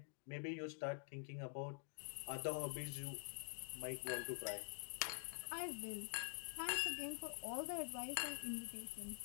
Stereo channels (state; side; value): silent; right; digital silence